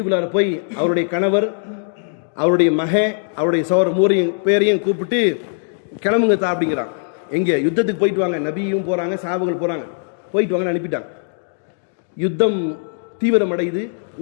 போய் அவருடைய கணவர், அவருடைய அவருடைய சகோதர மூரையும் பேரையும் கூப்பிட்டு கிளம்புங்க தா அப்படிங்கிறான். எங்கே? யுத்தத்துக்கு போயிட்டு வாங்க. நபியும் போகிறாங்க, சஹாபாக்கள் போகிறாங்க, போயிட்டு வாங்கன்னு அனுப்பிட்டாங்க. யுத்தம் தீவிரம் அடையுது.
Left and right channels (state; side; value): silent; right; digital silence